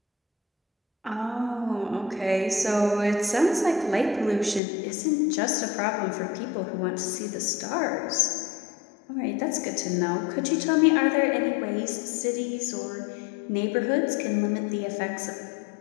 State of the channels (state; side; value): drops out; right; at 4.6 s